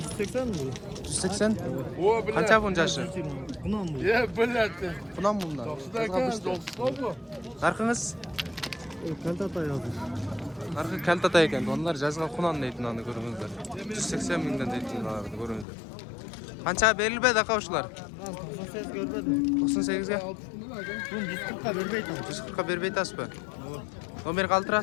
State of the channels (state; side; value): drops out; right; at 15.7 s